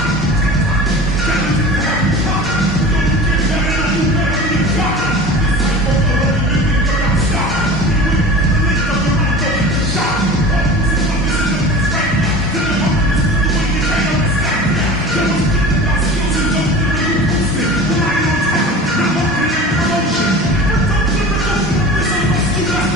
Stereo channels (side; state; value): both; normal; correlation 0.36